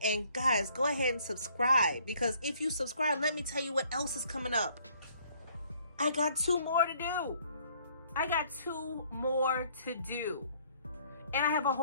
and guys, go ahead and subscribe, because if you subscribe, let me tell you what else is coming up. I got 2 more to do. And I have a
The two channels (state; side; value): inverted; both; correlation -0.62